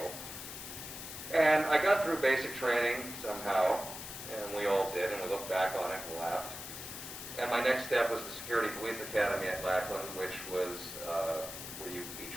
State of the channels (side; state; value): left; noise; hiss, 9 dB below the sound